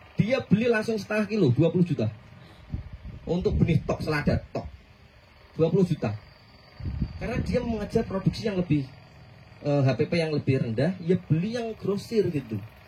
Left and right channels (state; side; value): identical; both; correlation 1.00